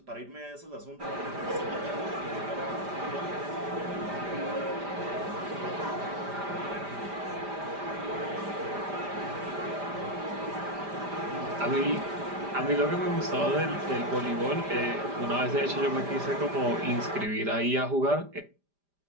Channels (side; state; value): left; late; 5.0 ms